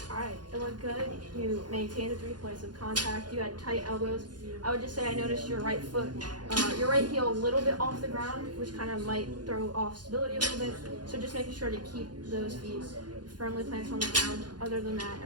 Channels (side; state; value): left; late; 0.70 ms